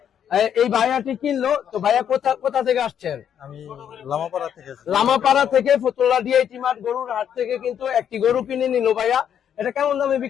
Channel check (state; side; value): quieter; right; 9.0 dB